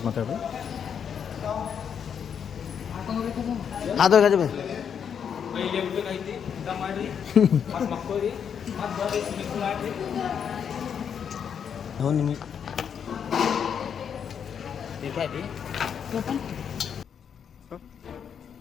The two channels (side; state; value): right; quieter; 7.7 dB